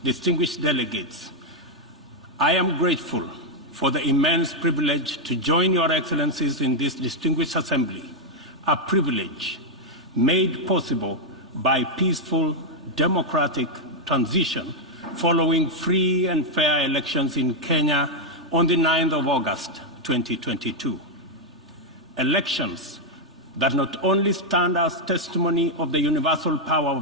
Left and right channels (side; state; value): both; normal; correlation -0.01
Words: distinguished delegates, I am grateful for the immense privilege to join Your Excellencies in this distinguished assembly, a privilege made possible by peaceful, democratic transition following free and fair elections in Kenya on the 9th of August 2022. Elections that not only stand as testimony of the universal power